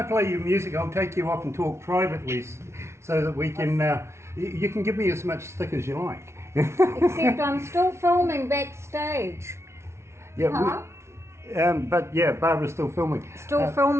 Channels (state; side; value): late; left; 0.13 ms